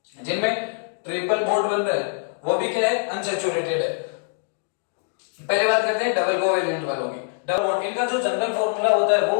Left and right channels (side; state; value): right; silent; digital silence